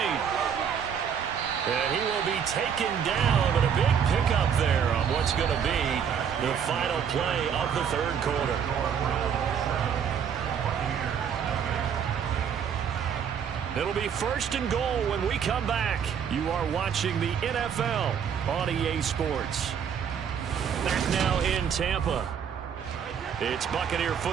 And he will be taken down, but a big pickup there on what's going to be the final play of the 3rd quarter. It'll be 1st and goal when we come back. You are watching the NFL on EA Sports. Back now in Tampa. It's Buccaneer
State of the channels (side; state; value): left; quieter; 7.7 dB